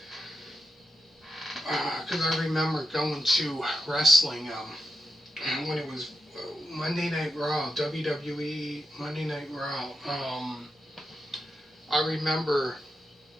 because I remember going to wrestling when it was Monday Night Raw, WWE Monday Night Raw. I remember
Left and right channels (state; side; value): normal; both; correlation 0.87